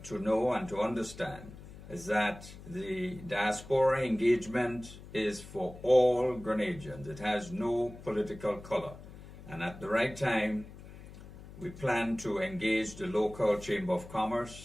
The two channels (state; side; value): noise; left; hum, 16 dB below the sound